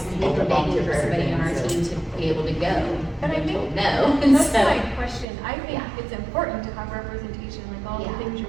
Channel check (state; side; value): drops out; left; at 5.2 s